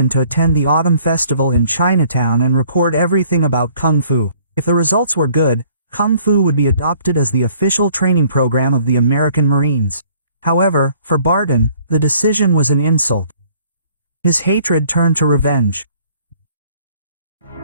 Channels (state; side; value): inverted; both; correlation -0.58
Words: to attend the autumn festival in Chinatown and record everything about Kung Fu. If the results were good, Kung Fu would be adopted as the official training program of the American Marines. However, for Barton, the decision was an insult. His hatred turned to revenge.